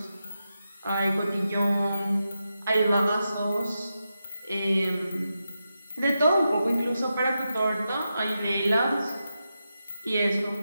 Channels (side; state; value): both; inverted; correlation -0.88